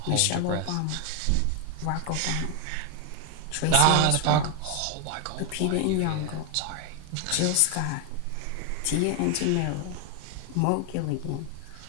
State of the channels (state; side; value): different; both; correlation 0.01